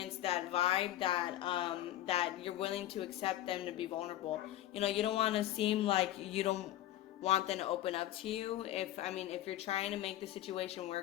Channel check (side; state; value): right; quieter; 13.8 dB